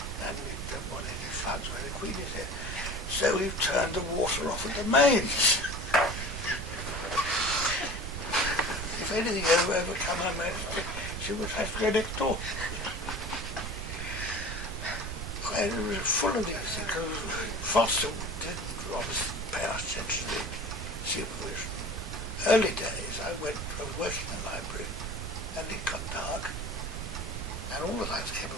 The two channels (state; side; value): noise; right; rumble, 6 dB below the sound